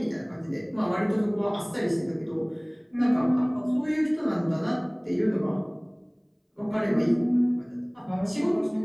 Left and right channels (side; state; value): both; identical; correlation 1.00